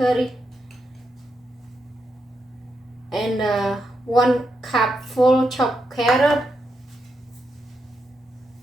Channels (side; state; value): both; normal; correlation 0.83